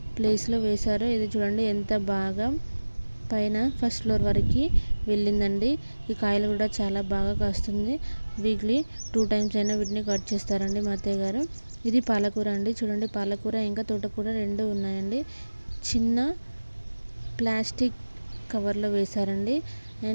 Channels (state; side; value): inverted; both; correlation -1.00